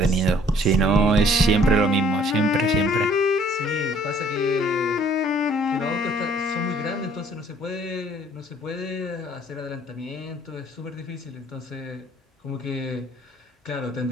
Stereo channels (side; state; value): both; normal; correlation 0.58